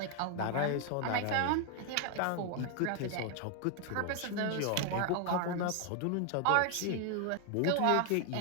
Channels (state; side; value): different; both; correlation 0.00